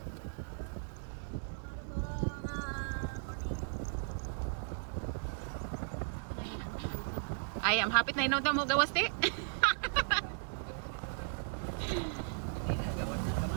Ay, ang hapit na inawta mo gawas, te.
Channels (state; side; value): silent; left; digital silence